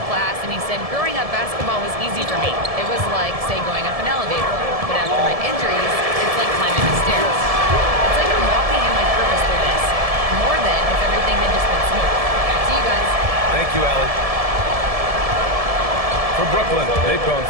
class, and he said, growing up, basketball was easy for me. It was like, say, going up an elevator. But after my injuries, it's like climbing the stairs. It's like I'm walking in my purpose through this. More than if everything had just been smooth. Back to you guys. Thank you, Allie. For Brooklyn, they've gone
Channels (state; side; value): late; left; 1.7 ms